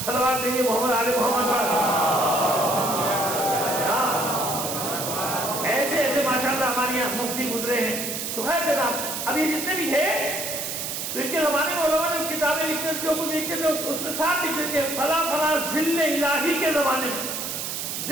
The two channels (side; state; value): right; noise; hiss, 4 dB below the sound